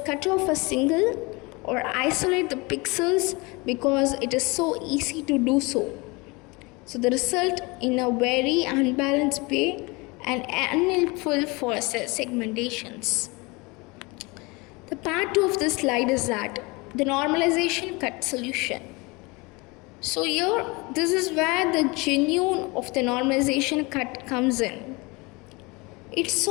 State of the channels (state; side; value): quieter; right; 26.0 dB